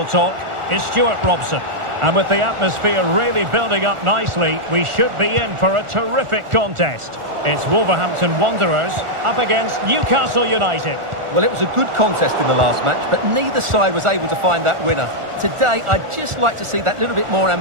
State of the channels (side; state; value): left; late; 1.4 ms